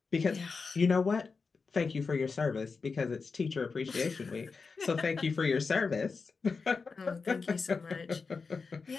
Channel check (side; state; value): right; quieter; 4.7 dB